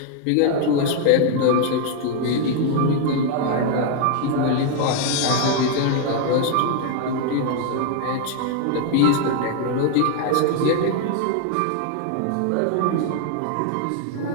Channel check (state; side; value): different; both; correlation 0.00